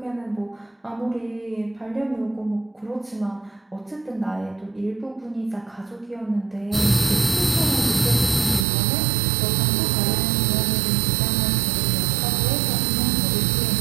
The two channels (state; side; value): drops out; left; at 8.7 s